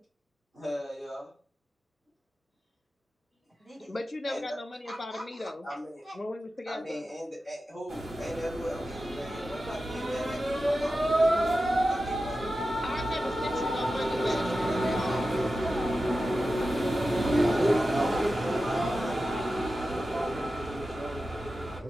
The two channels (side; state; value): both; normal; correlation 0.93